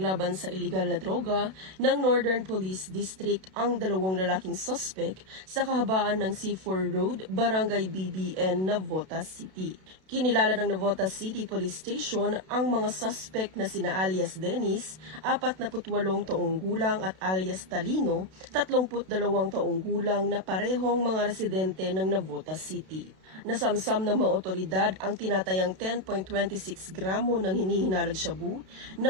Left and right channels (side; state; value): left; late; 32 ms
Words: sa iligal na droga ng Northern Police District ang dalawang lalaking suspect sa kahabaan ng C4 Road, Barangay BBN, Navotas City. Kinilala ng Navotas City Police Station ang mga suspect na sina alias Dennis, 48 taong gulang at alias Talino, 32 taong gulang na parehong mga residente ng Navotas City. Nasamsam ng mga otoridad ang tinatayang 10.26 gramo ng hinihinalang shabu na